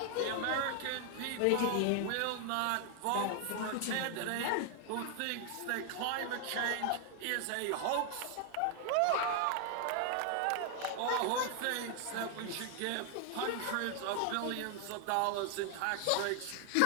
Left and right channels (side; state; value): both; different; correlation 0.01